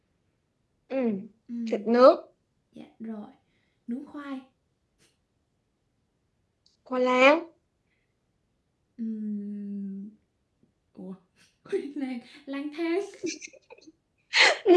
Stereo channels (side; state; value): both; identical; correlation 1.00